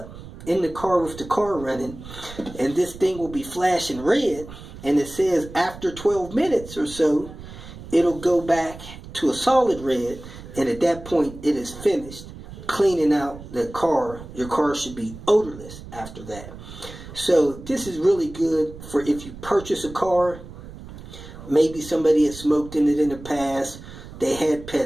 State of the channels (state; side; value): noise; right; rumble, 15 dB below the sound